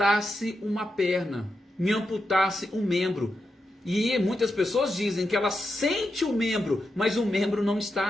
uma perna, me amputasse um membro. E muitas pessoas dizem que ela sente o membro, mas o membro não está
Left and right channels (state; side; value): normal; both; correlation 0.87